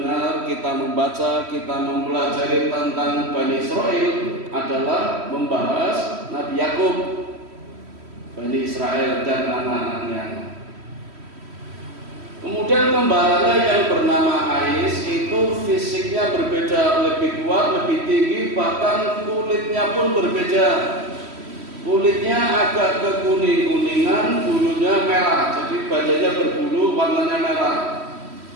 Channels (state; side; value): late; left; 3.1 ms